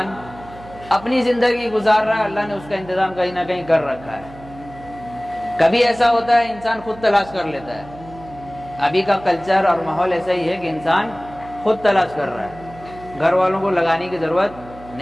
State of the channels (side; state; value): right; noise; hum, 18 dB below the sound